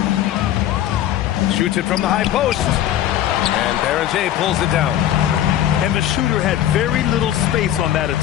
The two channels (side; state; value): right; quieter; 11.9 dB